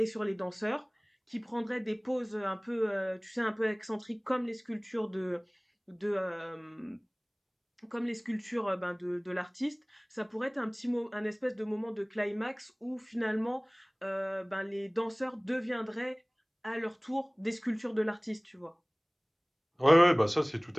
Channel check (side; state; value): both; identical; correlation 1.00